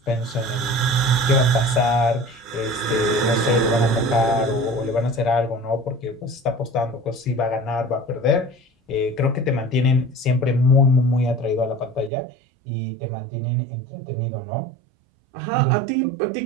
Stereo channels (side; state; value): left; drops out; at 12.1 s